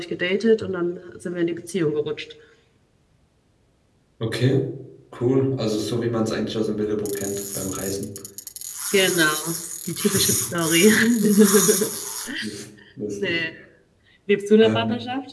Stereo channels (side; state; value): both; identical; correlation 1.00